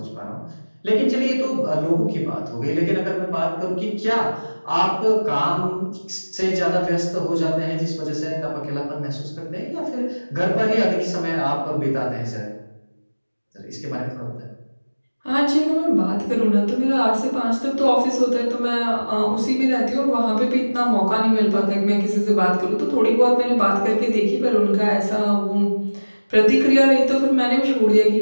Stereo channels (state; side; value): inverted; both; correlation -1.00